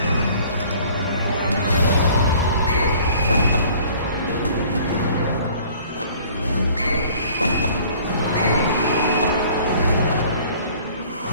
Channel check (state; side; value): inverted; both; correlation -0.52